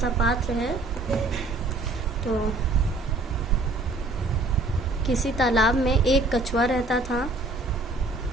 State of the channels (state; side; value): quieter; left; 3.0 dB